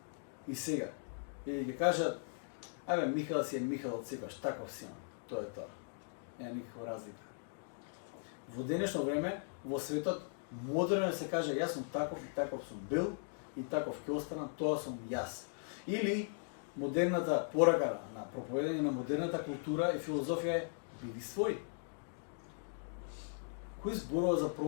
и сега. И ги кажат, абе, Михаил си е Михаил од секогаш, таков си има. Тоа е тоа. Нема никаква разлика. Во денешно време, во светот, модерно се каже, јас сум таков и таков сум бил и таков ќе останам, тоа сум јас. Или модерната порака на проповедање на модерната култура и филозофија е биди свој. Кој зборува за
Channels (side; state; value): right; silent; digital silence